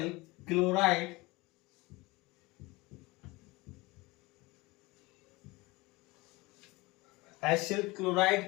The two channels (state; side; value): quieter; right; 22.7 dB